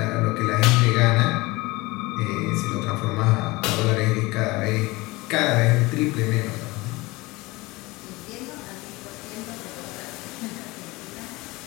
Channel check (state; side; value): quieter; right; 22.1 dB